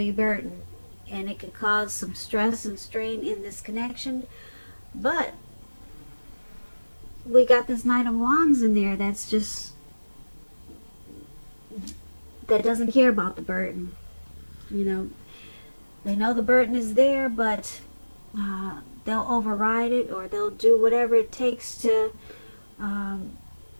burden and it could cause some stress and strain in this connection. But we got this Knight of Wands in there that doesn't care about the burden. You know, they know the burden is there, but they'll override it, or they'll do whatever it takes to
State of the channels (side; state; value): both; inverted; correlation -1.00